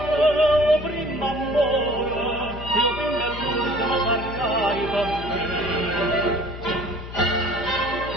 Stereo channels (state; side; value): noise; left; hum, 11 dB below the sound